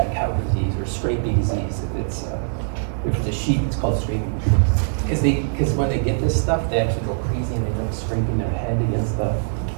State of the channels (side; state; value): left; silent; 60 dB below the other